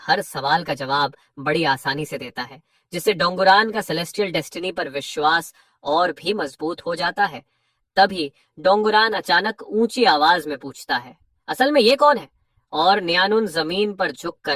सवाल का जवाब बड़ी आसानी से देता है, जिससे डोंगुरान का सेलेस्टियल डेस्टिनी पर विश्वास और भी मजबूत हो जाता है। तभी डोंगुरान अचानक ऊंची आवाज में पूछता है, असल में ये कौन है? और न्यानुन जमीन पर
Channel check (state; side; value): identical; both; correlation 1.00